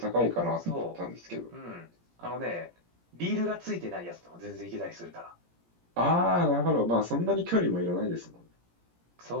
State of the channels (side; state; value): left; late; 17 ms